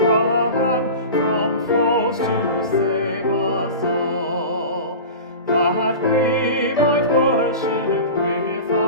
from foes to save us all, that we might worship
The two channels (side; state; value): both; inverted; correlation -0.32